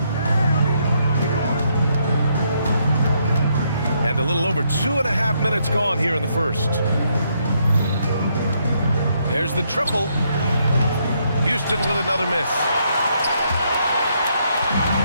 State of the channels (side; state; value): both; inverted; correlation -0.74